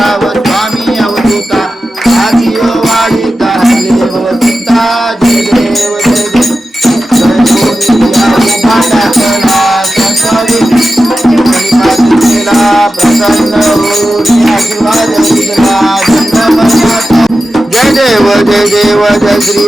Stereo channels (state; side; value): normal; both; correlation 0.93